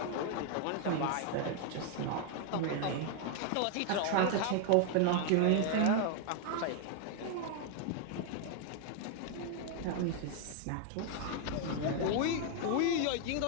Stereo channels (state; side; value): different; both; correlation 0.00